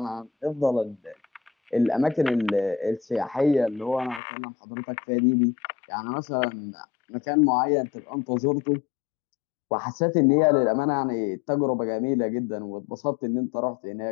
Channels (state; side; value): drops out; right; at 4.2 s